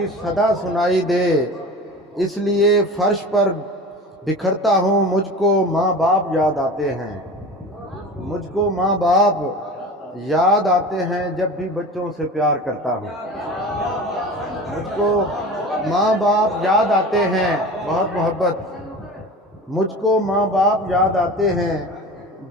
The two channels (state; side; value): normal; both; correlation 0.35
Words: सदा सुनाई दे, इसलिए फर्श पर बिखरता हूँ। मुझको माँ बाप याद आते हैं, मुझको माँ बाप याद आते हैं, जब भी बच्चों से प्यार करता हूँ। मुझको माँ बाप याद आते हैं, बहुत मोहब्बत। मुझको माँ बाप याद आते हैं,